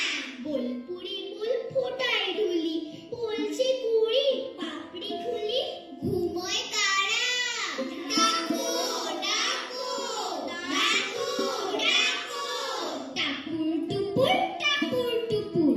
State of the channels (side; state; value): both; identical; correlation 1.00